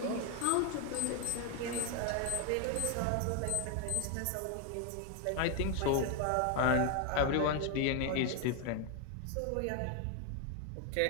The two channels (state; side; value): different; both; correlation 0.01